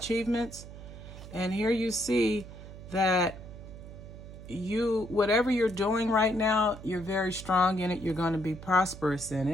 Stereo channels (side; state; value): right; noise; hum, 14 dB below the sound